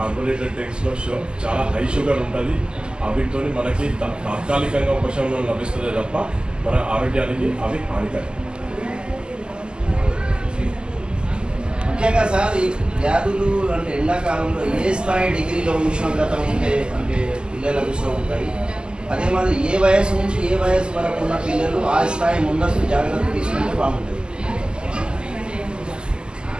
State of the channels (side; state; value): left; late; 0.048 ms